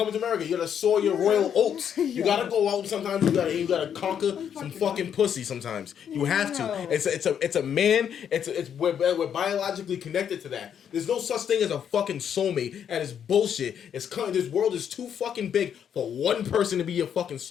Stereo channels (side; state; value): right; quieter; 8.5 dB